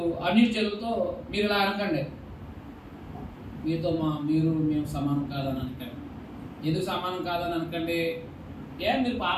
అన్యులతో మీరు ఇలా అనకండి. మేము సమానం కాదని అనకండి. ఎందుకు సమానం కాదని అనకండి? మీరు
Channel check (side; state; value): both; identical; correlation 1.00